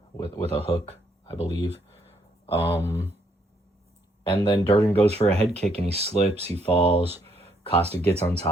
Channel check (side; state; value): both; normal; correlation 0.71